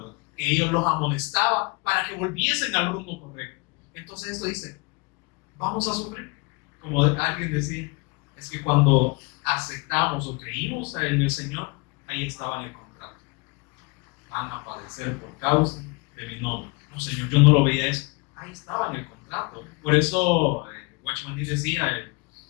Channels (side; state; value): right; quieter; 28.8 dB